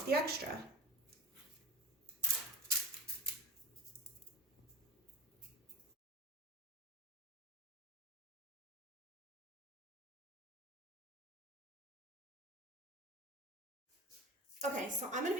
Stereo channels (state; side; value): normal; both; correlation 0.29